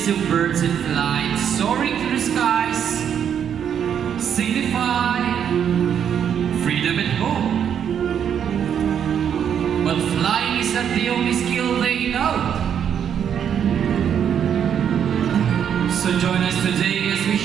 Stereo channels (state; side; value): quieter; left; 8.5 dB